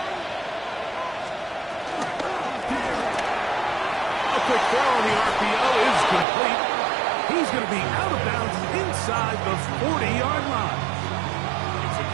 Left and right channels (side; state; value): left; drops out; at 6.2 s